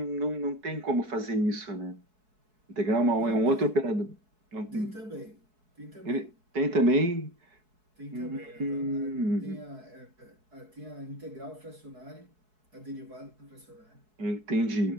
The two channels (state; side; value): late; left; 4.7 ms